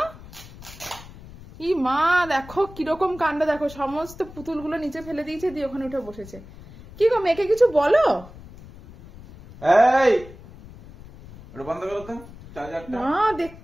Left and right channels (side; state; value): left; noise; rumble, 18 dB below the sound